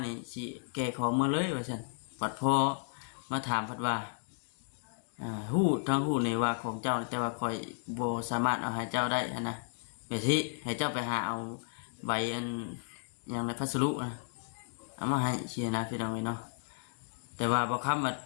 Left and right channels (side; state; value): right; silent; digital silence